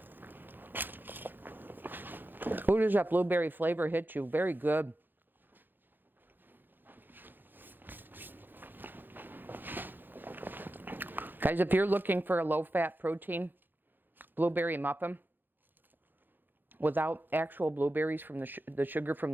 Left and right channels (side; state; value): left; late; 0.092 ms